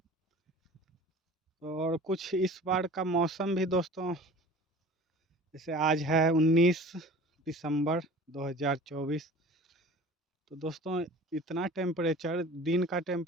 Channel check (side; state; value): both; normal; correlation 0.42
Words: और कुछ इस बार का मौसम भी दोस्तों, जैसे आज है 19 दिसंबर 2024, तो दोस्तों इतना टेम्परेचर, दिन का